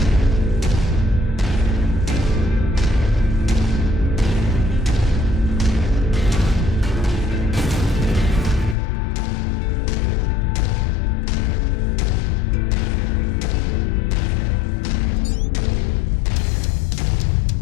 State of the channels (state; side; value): drops out; right; at 8.8 s